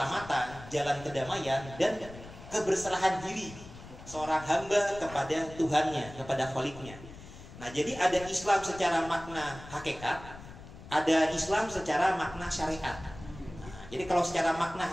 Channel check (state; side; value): noise; left; rumble, 16 dB below the sound